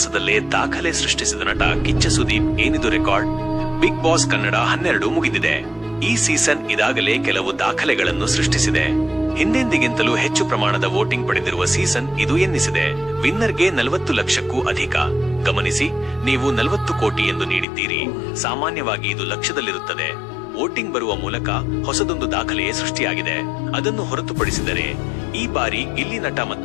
ದಾಖಲೆ ಸೃಷ್ಟಿಸಿದ ನಟ ಕಿಚ್ಚ ಸುದೀಪ್ ಏನಿದು ರೆಕಾರ್ಡ್. ಬಿಗ್ ಬಾಸ್ ಕನ್ನಡ 12 ಮುಗಿದಿದೆ. ಈ ಸೀಸನ್ ಇದಾಗಲೇ ಕೆಲವು ದಾಖಲೆಗಳನ್ನು ಸೃಷ್ಟಿಸಿದೆ. ಹಿಂದೆಂದಿಗಿಂತಲೂ ಹೆಚ್ಚು ಪ್ರಮಾಣದ ವೋಟಿಂಗ್ ಪಡೆದಿರುವ ಸೀಸನ್ ಇದು ಎನ್ನಿಸಿದೆ. ವಿನ್ನರ್ಗೆ 40 ಲಕ್ಷಕ್ಕೂ ಅಧಿಕ. ಗಮನಿಸಿ, ನೀವು 40 ಕೋಟಿ ಎಂದು ನೀಡಿದ್ದೀರಿ. ಸಾಮಾನ್ಯವಾಗಿ ಇದು ಲಕ್ಷದಲ್ಲಿರುತ್ತದೆ. ವೋಟಿಂಗ್ ಬರುವ ಮೂಲಕ ಹೊಸದೊಂದು ದಾಖಲೆಯೇ ಸೃಷ್ಟಿಯಾಗಿದೆ. ಅದನ್ನು ಹೊರತುಪಡಿಸಿದರೆ ಈ ಬಾರಿ ಗಿಲ್ಲಿ ನಟ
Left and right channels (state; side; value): drops out; right; at 17.7 s